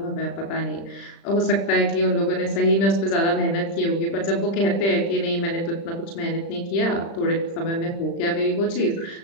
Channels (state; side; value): late; right; 36 ms